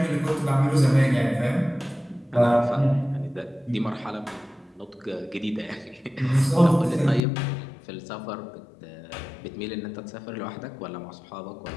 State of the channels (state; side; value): drops out; right; at 7.2 s